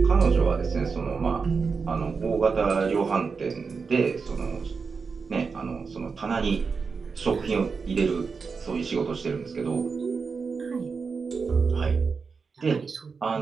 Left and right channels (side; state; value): left; quieter; 5.1 dB